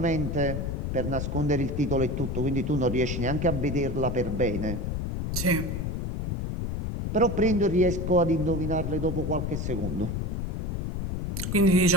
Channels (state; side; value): noise; left; rumble, 3 dB below the sound